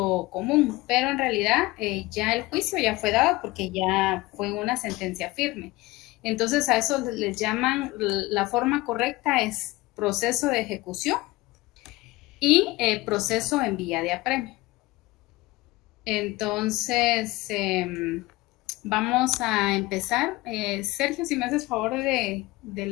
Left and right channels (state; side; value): quieter; right; 20.5 dB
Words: común, pero en realidad ya el juicio ya fue dado porque ya fue una sentencia firme. Entonces a eso les llaman, la forma correcta es proceso de ejecución y proceso en vía de apremio. Entonces, vamos a empezar. Sergio, si me haces favor de